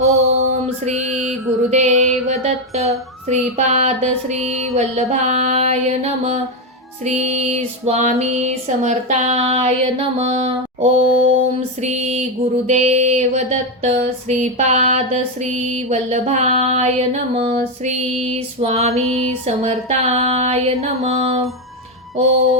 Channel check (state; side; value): normal; both; correlation 0.08